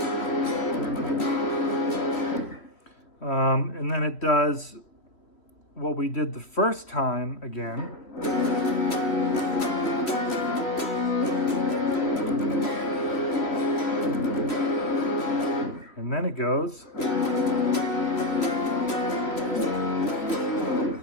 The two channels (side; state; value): right; late; 3.1 ms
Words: And then it does what we did the first time again. And then it goes.